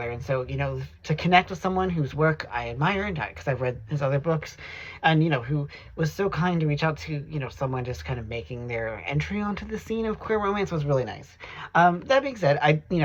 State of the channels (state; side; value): identical; both; correlation 1.00